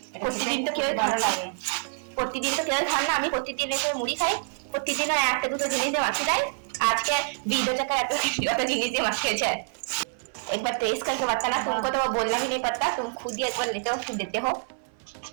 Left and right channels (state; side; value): silent; left; 57 dB below the other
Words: এটা প্রতিদিন তো খেতে কেউ ভালো খায়। লাগে। প্রতিদিন তো কেউ খান না, আমি প্রতিদিন এসে মুড়ি খাই, প্রতিদিনও একটা দুটো জিনিস দিয়ে মাখিয়ে দেয়। আজকে 20 টাকা এত জিনিস দিয়ে माखिए है। एक बार टेस्ट करके बताना, तुमको तो वो बोलना भी नहीं पड़ता, तुम खुद ही एक बार लेते हो फिर देते हो।